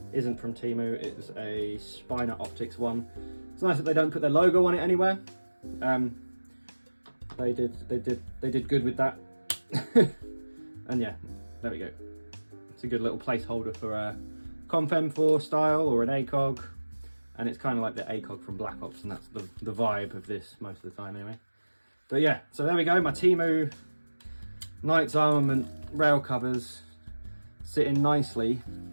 isn't from Temu. It's a Spiner Optics one. It's nice that they don't put their logo on it anywhere. They did good with that. And yeah, there we go. It's a good little placeholder for a Comp M4 style or an ACOG, and it's kind of like the ACOG from Black Ops, and that's the vibe of this most of the time anyway. But yeah, so there we go, my Temu Knight's Armament rail covers sitting nicely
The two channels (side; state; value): both; inverted; correlation -1.00